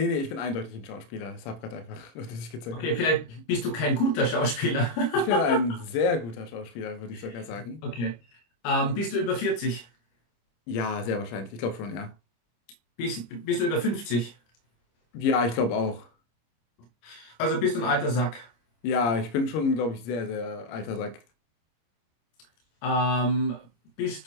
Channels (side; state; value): right; late; 25 ms